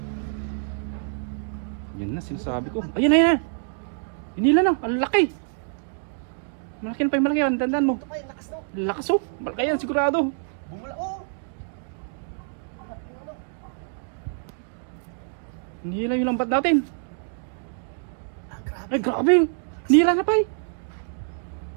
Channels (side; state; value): left; silent; digital silence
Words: Yan na, sinasabi ko. Ayun, ayun na. Hinila na, ang laki. Malaki yan, Pay, malaki yan. Dandan mo. Lakas oh, malaki yan, sigurado. Bumula, oh. Hinila yung lambat natin. Grabe. Ay, grabe. Hinila na, Pay.